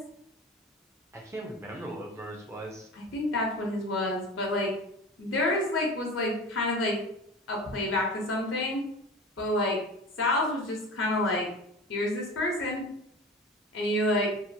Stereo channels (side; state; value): both; normal; correlation 0.34